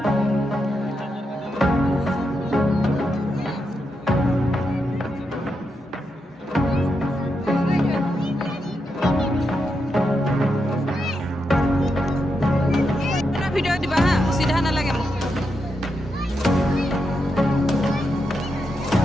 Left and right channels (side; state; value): both; normal; correlation 0.84